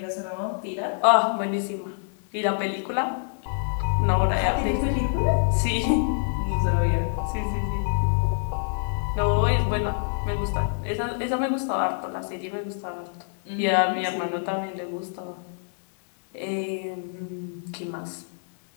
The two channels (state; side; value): silent; right; digital silence